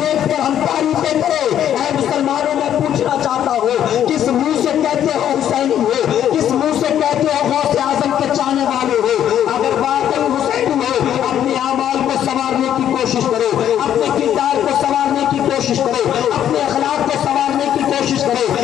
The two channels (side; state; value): right; quieter; 10.4 dB